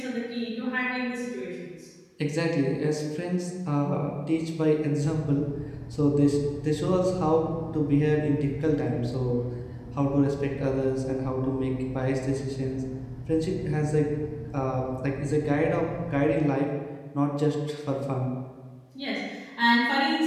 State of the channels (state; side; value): identical; both; correlation 1.00